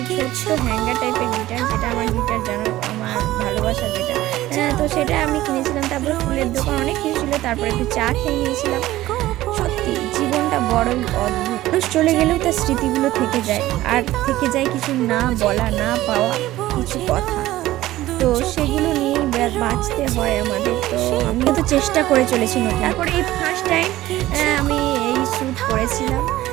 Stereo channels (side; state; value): left; quieter; 15.8 dB